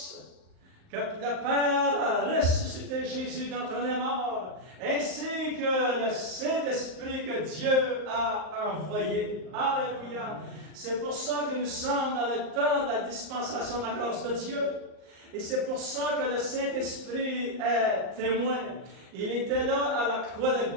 que le Père a ressuscité Jésus d'entre les morts, ainsi que le Saint-Esprit que Dieu a envoyé. Alléluia! C'est pour ça que nous sommes dans le temps de la dispensation de la grâce de Dieu. Et c'est pour ça que le Saint-Esprit est témoin. Il était là à la croix de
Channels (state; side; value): late; left; 38 ms